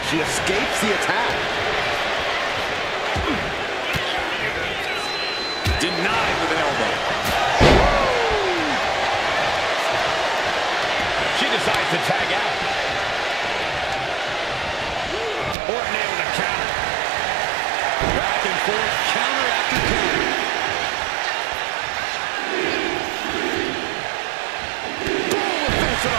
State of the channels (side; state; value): left; drops out; at 15.6 s